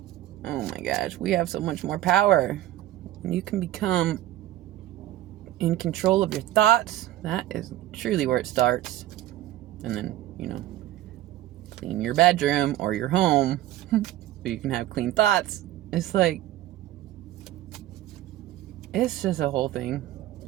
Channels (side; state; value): left; quieter; 14.3 dB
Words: Oh my gosh, we have so much more power. You can become in control of your thoughts. That is truly where it starts. And then, clean your bedroom or your home so you can have clean thoughts. It's like, it's just a whole thing.